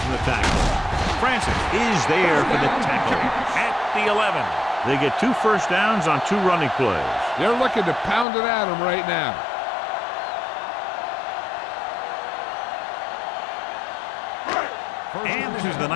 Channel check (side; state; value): right; drops out; at 8.2 s